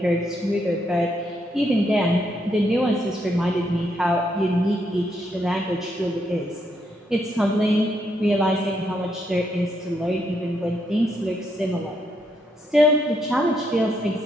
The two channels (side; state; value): both; normal; correlation 0.77